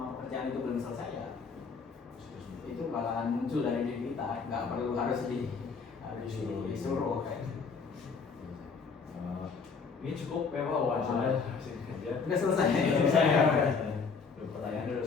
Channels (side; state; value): right; quieter; 5.2 dB